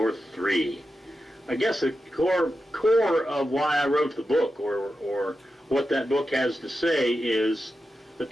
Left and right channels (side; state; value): both; normal; correlation 0.90